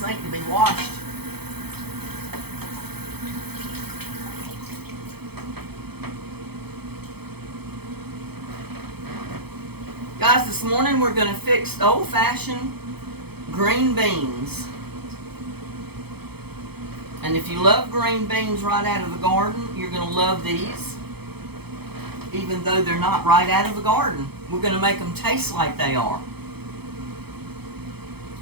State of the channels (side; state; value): left; late; 0.97 ms